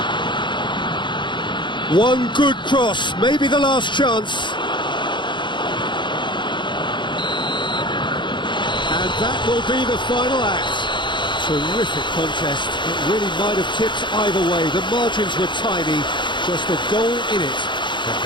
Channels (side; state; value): right; late; 0.23 ms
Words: One good cross, maybe the last chance. And that will be the final act. Terrific contest. It really might have tipped either way. The margins were tiny, just a goal in it, and